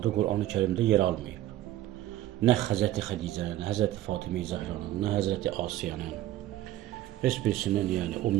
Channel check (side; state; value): left; quieter; 14.1 dB